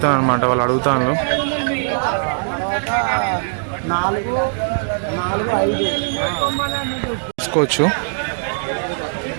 అనమాట, వాళ్ళు అడుగుతాను. చూసుకోవచ్చు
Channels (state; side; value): silent; left; digital silence